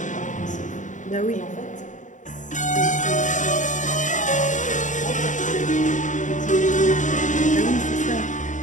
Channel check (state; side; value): late; right; 0.36 ms